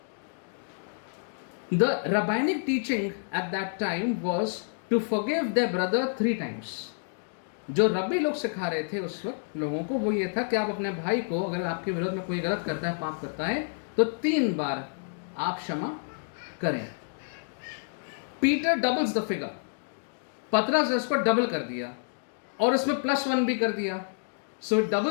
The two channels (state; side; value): silent; right; digital silence